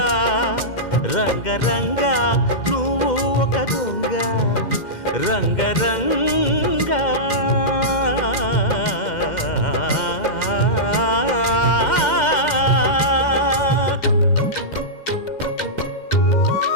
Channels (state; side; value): late; right; 2.1 ms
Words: రంగ రంగ నువ్వు ఒక దొంగ, రంగ రంగ.